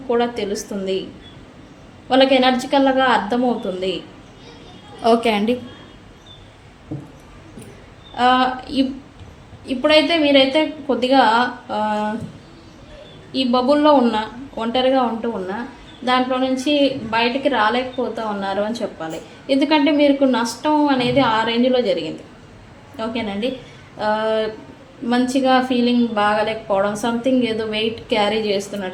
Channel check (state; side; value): identical; both; correlation 1.00